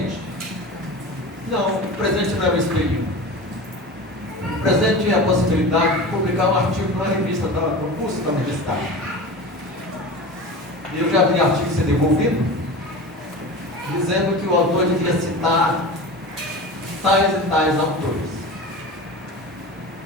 Não, o presente não é um espelhinho. O presente é a possibilidade de publicar um artigo numa revista, no curso da universidade. E eu já vi artigo ser devolvido, dizendo que o autor devia citar tais e tais autores.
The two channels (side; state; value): both; normal; correlation 0.31